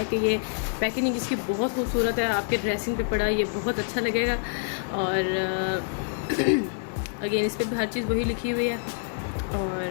कि ये पैकेजिंग इसकी बहुत खूबसूरत है। आपके ड्रेसिंग पे पड़ा ये बहुत अच्छा लगेगा। और अगेन इस पर भी हर चीज़ वही लिखी हुई है।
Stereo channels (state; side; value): silent; right; digital silence